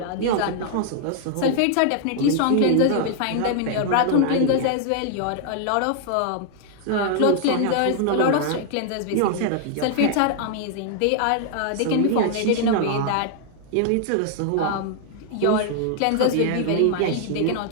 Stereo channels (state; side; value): different; both; correlation 0.00